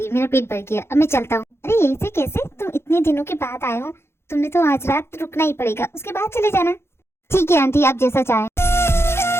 मेरा पेट भर गया, अब मैं चलता हूँ। अरे ऐसे कैसे? तुम इतने दिनों के बाद आए हो, तुमने तो आज रात रुकना ही पड़ेगा, उसके बाद चले जाना। ठीक है आंटी, आप जैसा चाहें।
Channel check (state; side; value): late; right; 0.12 ms